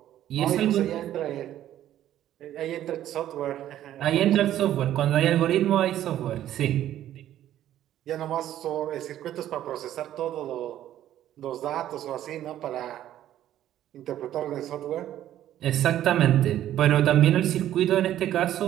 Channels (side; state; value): left; quieter; 12.2 dB